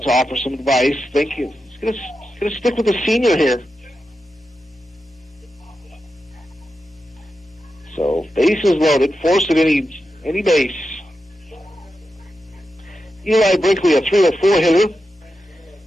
to offer some advice. Think he's going to stick with the senior here. So bases loaded, force at any base. Eli Brinkley, a 304 hitter.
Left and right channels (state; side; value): normal; both; correlation 0.89